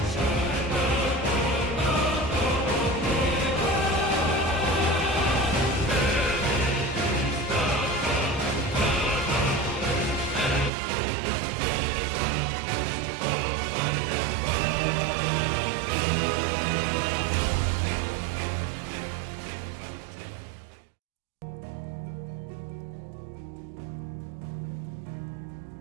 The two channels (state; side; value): drops out; left; at 10.7 s